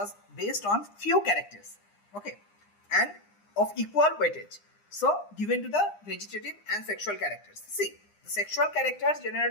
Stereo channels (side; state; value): right; late; 9.8 ms